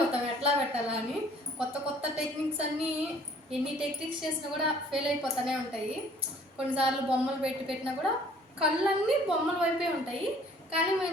ఎట్లా పెట్టాలా అని. కొత్త కొత్త టెక్నిక్స్ అన్నీ ఎన్ని టెక్నిక్స్ చేసినా కూడా ఫెయిల్ అయిపోతూనే ఉంటాయి. కొన్నిసార్లు బొమ్మలు పెట్టినా కూడా కళ్ళన్నీ బొమ్మల వైపే ఉంటాయి, కానీ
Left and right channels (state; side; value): normal; both; correlation 0.56